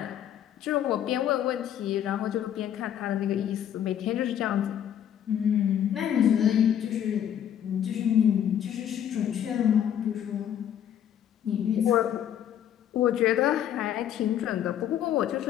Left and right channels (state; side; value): quieter; right; 10.0 dB